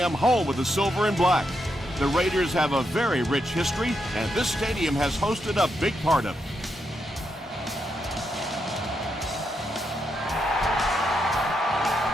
home of the Silver and Black. The Raiders have a very rich history, and this stadium has hosted a big part of it.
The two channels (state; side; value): normal; both; correlation 0.82